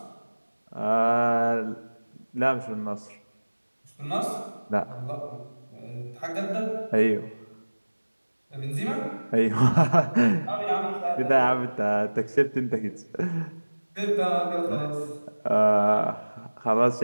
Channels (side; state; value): both; inverted; correlation -1.00